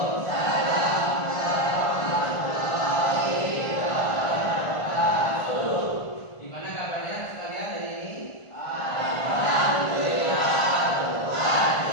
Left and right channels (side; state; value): right; late; 1.5 ms